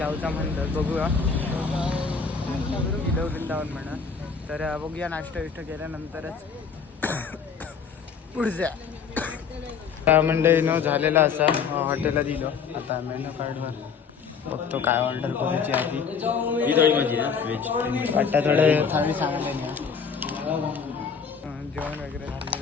म्हणतात. बघूया वृंदावन म्हणा. तर बघूया नाश्ता विष्टा केल्यानंतरच पुढच्या मंडळी न झालेला असा हॉटेलला दिलो. आता मेनू कार्डवर बघतो काय ऑर्डर करायची आधी. ही थोडी माझी ना व्हेज. वाटतं थोडे थाळी सांगायला नाही. जेवण वगैरे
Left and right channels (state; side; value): quieter; right; 6.0 dB